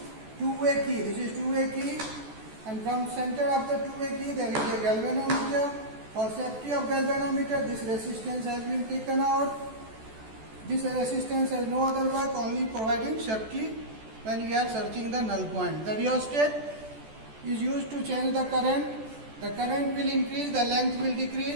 two-way key. This is two-way key, and from center of the two-way key there is a galvanometer. For safety of galvanometer, this resistance has been taken out. This resistance has no other work, only providing safety when we are searching the null point. The rheostat is used to change the current. The current will increase, the length will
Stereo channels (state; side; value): late; left; 14 ms